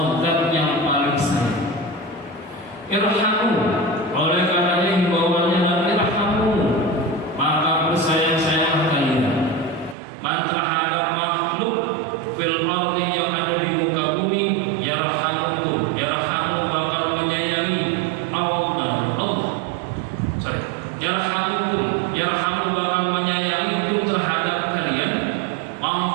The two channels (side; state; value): left; drops out; at 10.0 s